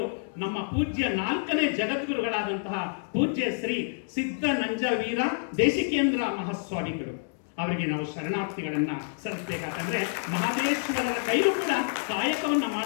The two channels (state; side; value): silent; right; digital silence